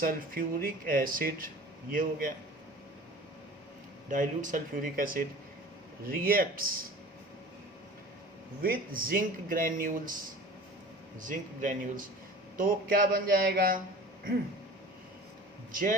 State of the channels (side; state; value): both; normal; correlation 0.41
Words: acid, ये हो गया, dilute sulphuric acid reacts with zinc granules. Zinc granules तो क्या बन जाएगा?